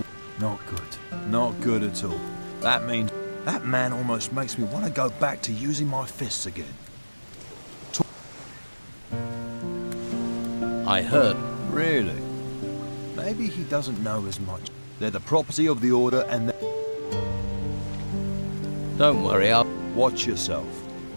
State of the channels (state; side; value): inverted; both; correlation -1.00